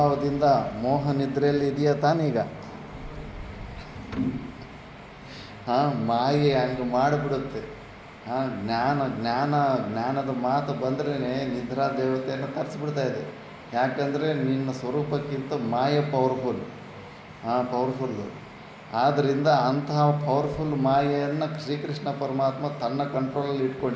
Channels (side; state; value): both; identical; correlation 1.00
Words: ಮೋಹ ನಿದ್ರೆಯಲ್ಲಿ ಇದೆಯಾ ತಾನೀಗ? ಮಾಯೆ ಹಂಗೆ ಮಾಡಿಬಿಡುತ್ತೆ. ಜ್ಞಾನದ ಮಾತು ಬಂದ್ರೇ ನಿದ್ರಾ ದೇವತೆಯನ್ನು ತರಿಸ್ಬಿಡ್ತಾ ಇದೆ. ಯಾಕಂದರೆ ನಿನ್ನ ಸ್ವರೂಪಕ್ಕಿಂತ ಮಾಯೆ ಪವರ್ಫುಲ್ಲು. ಆದ್ದರಿಂದ ಅಂತಹ ಪವರ್ಫುಲ್ ಮಾಯೆಯನ್ನು ಶ್ರೀಕೃಷ್ಣ ಪರಮಾತ್ಮ ತನ್ನ ಕಂಟ್ರೋಲಲ್ಲಿ